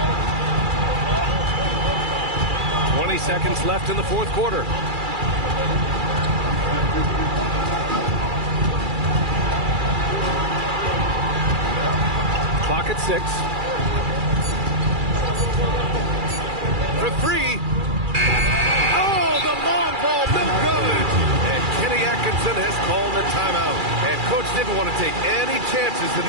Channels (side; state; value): left; late; 2.3 ms